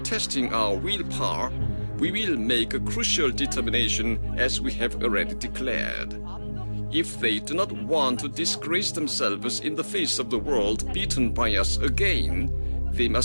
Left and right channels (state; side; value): inverted; both; correlation -1.00